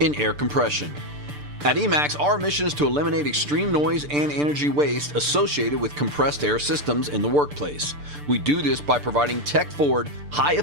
air compression. At Emax, our mission is to eliminate extreme noise and energy waste associated with compressed air systems in the workplace. We do this by providing tech-forward,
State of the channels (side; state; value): left; late; 6.8 ms